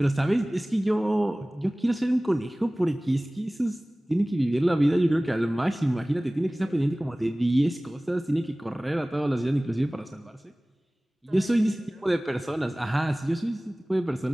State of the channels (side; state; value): both; normal; correlation 0.98